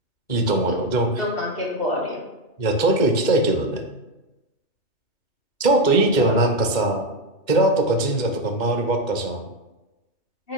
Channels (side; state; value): right; late; 2.1 ms